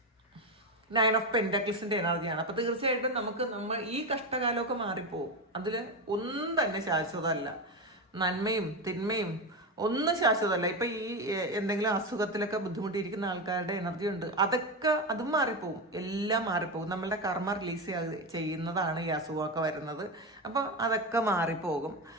9 ഓഫ് പെന്റാക്കിൾസിന്റെ എനർജിയാണ്. അപ്പം തീർച്ചയായിട്ടും നമ്മൾ ഈ കഷ്ടകാലമൊക്കെ മാറിപ്പോവും. അതിൽ ഒന്നും തന്നെ ശാശ്വതമല്ല. നന്മയും തിന്മയും ഒന്നും ശാശ്വതമല്ല. ഇപ്പം ഈ എന്തെങ്കിലും അസുഖത്തിലൊക്കെ ബുദ്ധിമുട്ടിയിരിക്കുന്ന ആൾക്കാരുടെ എനർജി ഉണ്ട്, അതും മാറിപ്പോവും. എല്ലാം മാറിപ്പോകും. നമ്മളുടെ കർമ്മ റിലീസ് ചെയ്യുന്നതാണ് ഈ അസുഖമൊക്കെ വരുന്നത്. അപ്പോൾ അതൊക്കെ മാറിപ്പോകും.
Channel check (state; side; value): normal; both; correlation 0.15